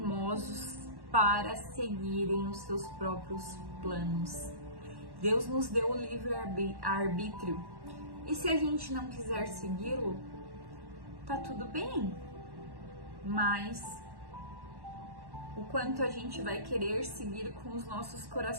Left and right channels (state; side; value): late; left; 1.1 ms